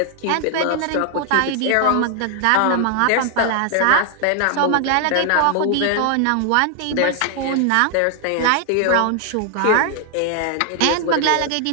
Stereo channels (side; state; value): both; different; correlation 0.00